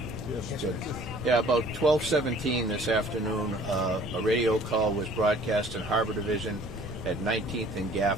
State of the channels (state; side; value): normal; both; correlation 0.53